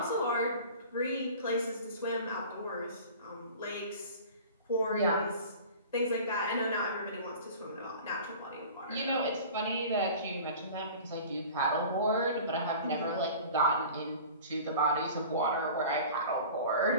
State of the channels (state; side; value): inverted; both; correlation -0.40